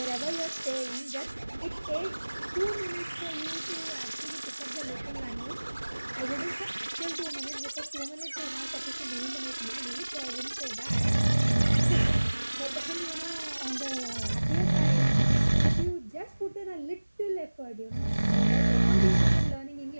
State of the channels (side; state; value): both; inverted; correlation -1.00